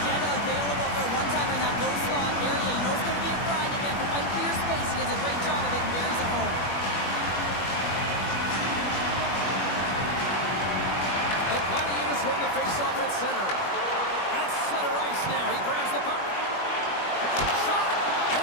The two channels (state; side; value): late; right; 21 ms